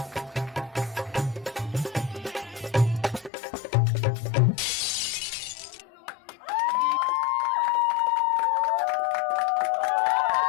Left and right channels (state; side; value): drops out; right; at 3.3 s